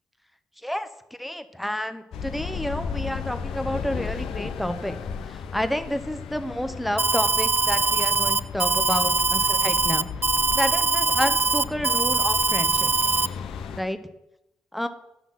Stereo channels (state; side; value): normal; both; correlation 0.61